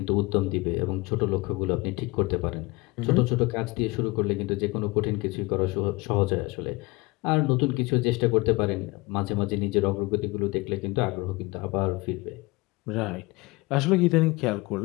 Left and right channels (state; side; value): quieter; right; 23.8 dB